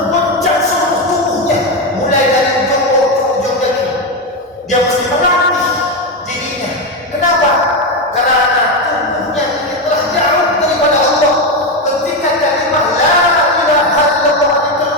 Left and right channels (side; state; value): both; normal; correlation 0.11